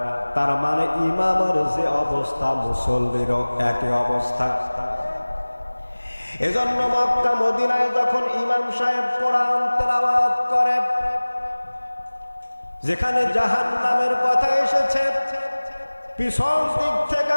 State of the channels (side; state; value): both; inverted; correlation -1.00